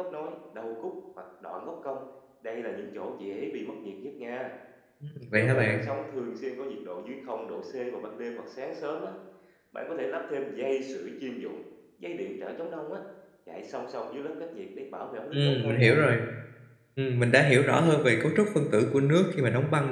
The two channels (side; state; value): both; identical; correlation 1.00